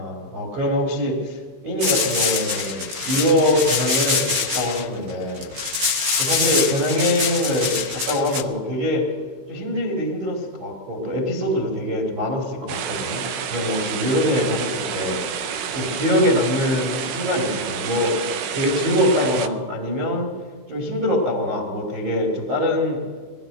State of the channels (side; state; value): left; late; 15 ms